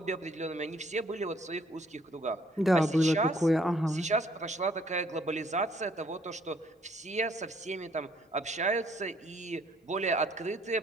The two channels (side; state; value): both; normal; correlation 0.64